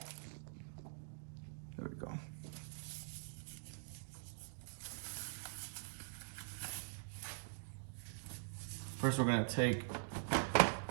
There we go. First, we're gonna take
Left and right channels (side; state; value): left; silent; digital silence